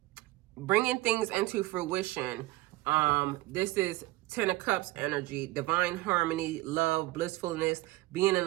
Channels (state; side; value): quieter; left; 18.9 dB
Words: bringing things into fruition. This is 10 of Cups energy, divine harmony, love, blissfulness, being in